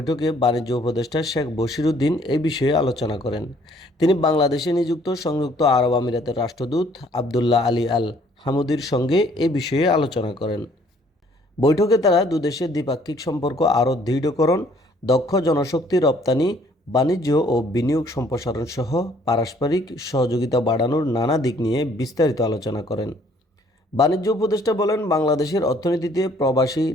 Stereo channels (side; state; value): both; normal; correlation 0.61